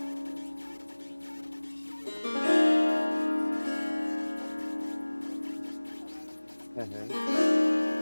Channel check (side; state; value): both; inverted; correlation -1.00